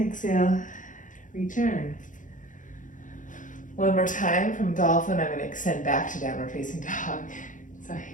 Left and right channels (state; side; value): late; right; 0.37 ms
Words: return. One more time from dolphin, I'm going to extend back to downward facing dog. So